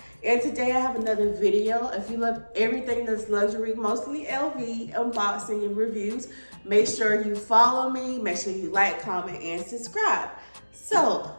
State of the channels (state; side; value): inverted; both; correlation -1.00